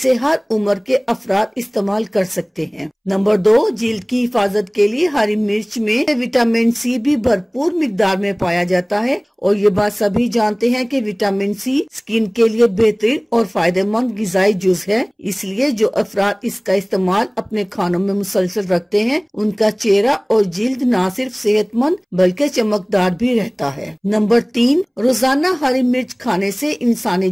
हर उम्र के अफराद इस्तेमाल कर सकते हैं। नंबर 2, जिल्द की हिफाजत के लिए हरी मिर्च में विटामिन सी भी भरपूर मिकदार में पाया जाता है और ये बात सभी जानते हैं कि विटामिन सी स्किन के लिए बेहतरीन और फायदेमंद गिजाई जुज है। इसलिए जो अफराद इसका इस्तेमाल अपने खानों में मुसलसल रखते हैं उनका चेहरा और जिल्द न सिर्फ सेहतमंद बल्कि चमकदार भी रहता है। नंबर 3, रोजाना हरी मिर्च खाने से इंसानी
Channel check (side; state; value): both; identical; correlation 1.00